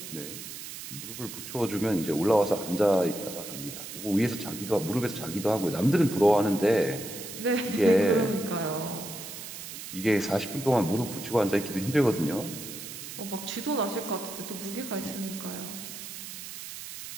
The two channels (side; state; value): right; noise; hiss, 10 dB below the sound